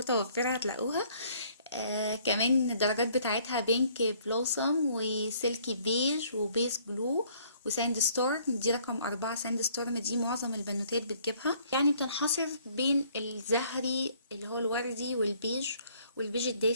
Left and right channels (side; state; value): both; inverted; correlation -0.61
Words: هتلاقوها. كمان الدرجات بتاعتها بينك بلوسم وسيلكي بيج وبيس بلو وساند ستورم. دي رقم 4. ساند ستورم دي معظم البنوتات بتجيبها، يعني بتنحصر بين الزهري اللي هو الوردي والبيج